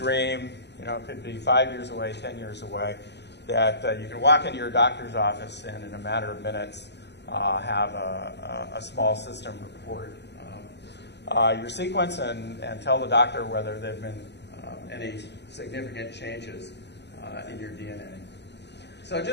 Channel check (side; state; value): right; late; 0.50 ms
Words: it could be 5 years away, 10 years away, that you can walk into your doctor's office and in a matter of minutes have a small system report your sequence and tell the doctor whether there have been any significant changes in your DNA. So